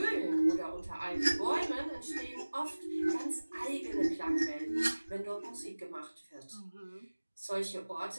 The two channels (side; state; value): both; inverted; correlation -1.00